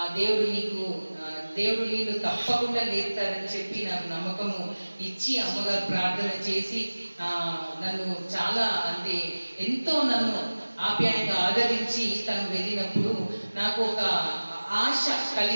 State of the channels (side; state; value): both; inverted; correlation -1.00